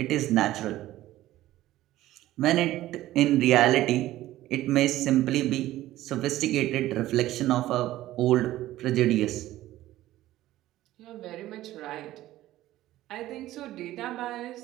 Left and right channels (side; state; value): left; quieter; 15.1 dB